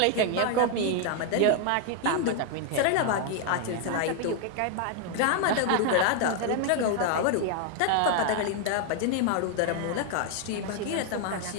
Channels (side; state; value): both; different; correlation 0.00